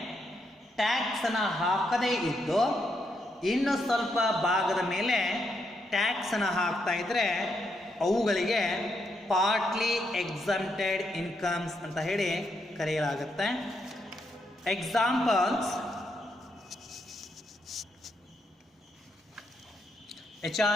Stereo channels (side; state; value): both; normal; correlation 0.79